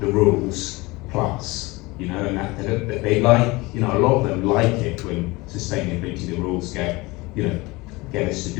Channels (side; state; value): right; quieter; 22.8 dB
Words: rules plus, you know, and that they like, you know, a lot of them like it when sustainability, the rules get us to